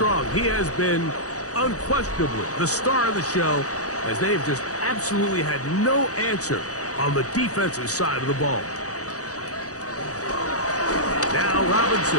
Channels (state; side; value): late; right; 0.66 ms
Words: He has been unquestionably the star of the show, as they've just absolutely had no answer on the defensive side of the ball. Now